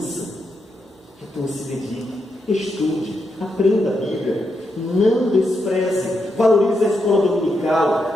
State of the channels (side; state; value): both; normal; correlation 0.83